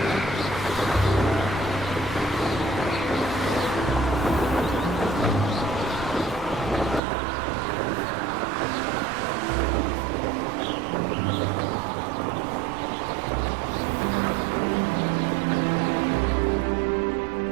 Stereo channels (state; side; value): drops out; left; at 7.0 s